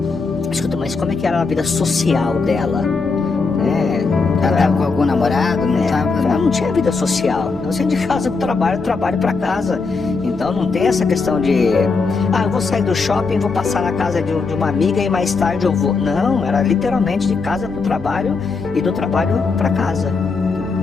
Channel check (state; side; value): quieter; right; 4.4 dB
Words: escuta, mas como é que era a vida social dela? Ela estava com algum namorado? Ela não tinha vida social. Ela saía de casa para o trabalho para casa. Então não tem essa questão de eu vou sair do shopping, vou passar na casa de uma amiga e mais tarde eu vou. Não, era literalmente de casa para o trabalho e do trabalho para casa.